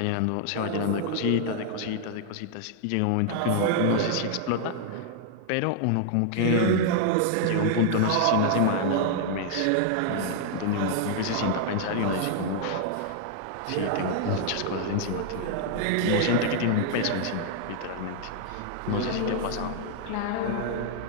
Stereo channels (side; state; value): both; different; correlation 0.00